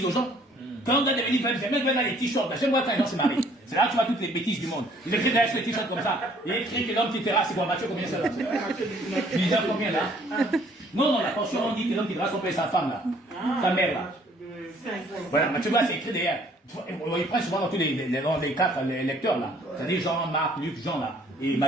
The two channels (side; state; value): both; normal; correlation 0.60